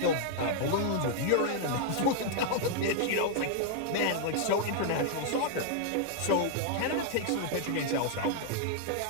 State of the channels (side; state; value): both; different; correlation -0.01